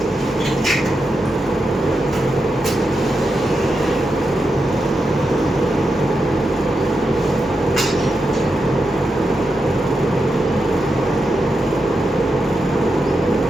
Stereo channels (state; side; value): normal; both; correlation 0.87